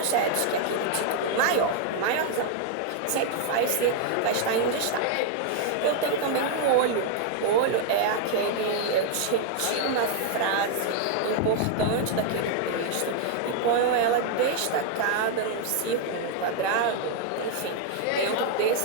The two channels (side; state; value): both; different; correlation 0.00